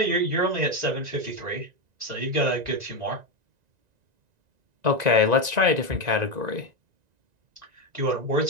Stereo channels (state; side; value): late; left; 1.9 ms